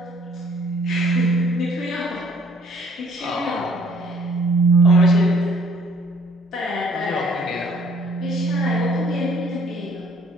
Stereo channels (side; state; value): both; normal; correlation 0.59